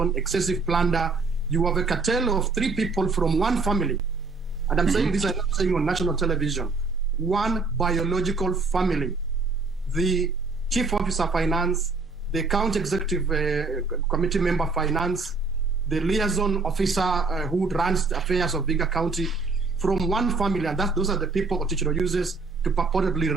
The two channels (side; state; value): left; quieter; 4.1 dB